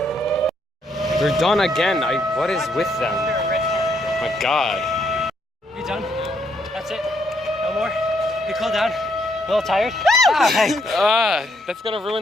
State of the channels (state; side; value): normal; both; correlation 0.73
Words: They're done again. What is with them? My God. You done? That's it? No more? You cool down? A little tired? That's gonna ruin